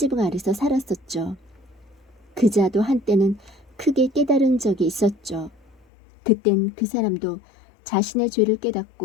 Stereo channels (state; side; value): drops out; right; at 5.9 s